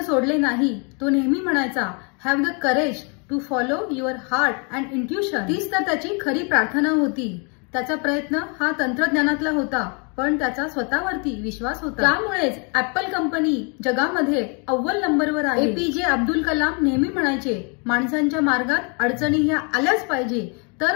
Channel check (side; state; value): right; quieter; 35.6 dB